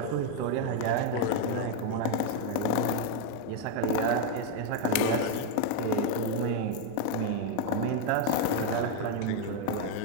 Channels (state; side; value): different; both; correlation 0.00